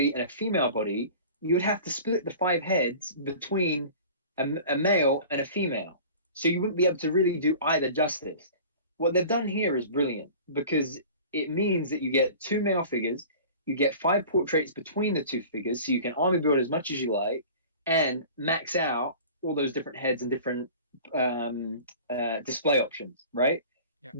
and a female body, you would have to split the 5 heads between a male and a female. So you wouldn't be able to really do either justice. What they've done here is brilliant because it means that you get 2 male figures, you get 5 portraits between the 2 figures, so you can army build as much as you like and max out all those different heads and different display options, right? Yeah.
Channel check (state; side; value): inverted; both; correlation -0.41